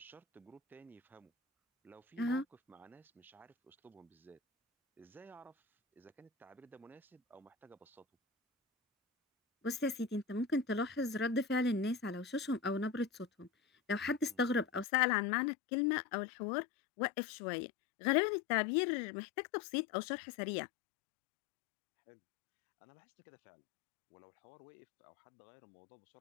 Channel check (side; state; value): right; drops out; at 14.9 s